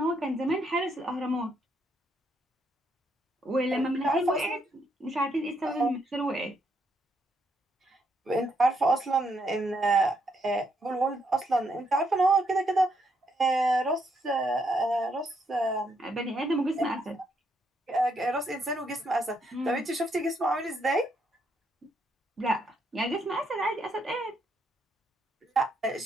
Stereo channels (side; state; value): both; normal; correlation 0.75